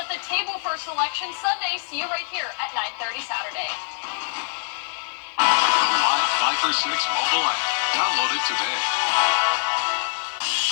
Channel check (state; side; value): silent; right; digital silence